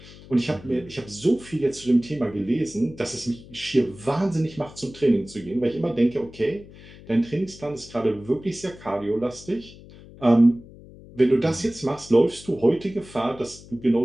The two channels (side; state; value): left; noise; hum, 19 dB below the sound